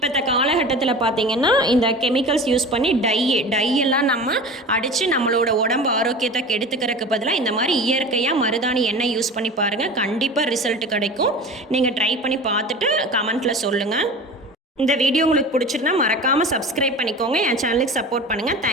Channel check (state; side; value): normal; both; correlation 0.35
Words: காலகட்டத்தில் பார்த்திங்கன்னா இந்த கெமிக்கல்ஸ் யூஸ் பண்ணி டையெல்லாம் நம்ம அடித்து நம்மளோட உடம்பு ஆரோக்கியத்தை கெடுத்துக்கிறதுக்கு பதிலாக இந்த மாதிரி இயற்கையாக மருதாணி எண்ணெய் யூஸ் பண்ணி பாருங்கள். கண்டிப்பாக ரிசல்ட் கிடைக்கும். நீங்கள் ட்ரை பண்ணி பார்த்துட்டு கமெண்ட்டில் சொல்லுங்கள். இந்த வீடியோ உங்களுக்கு பிடிச்சிருந்தா மறக்காமல் சப்ஸ்கிரைப் பண்ணிக்கோங்க. என் சேனலுக்கு சப்போர்ட் பண்ணுங்கள்.